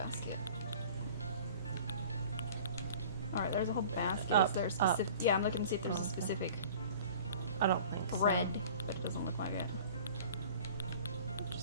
Alright, there's a whole basket. Is there a specific... Yeah, I'm looking to see if there's a specific I don't think bread, but it doesn't look like it.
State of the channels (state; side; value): inverted; both; correlation -0.45